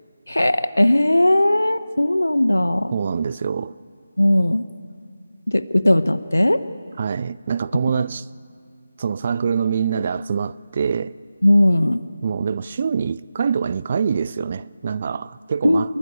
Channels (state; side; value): inverted; both; correlation -0.94